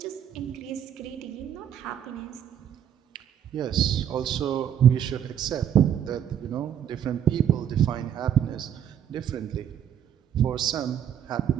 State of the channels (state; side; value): quieter; left; 9.6 dB